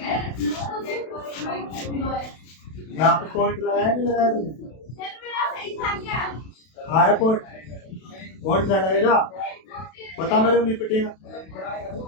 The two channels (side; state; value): right; late; 32 ms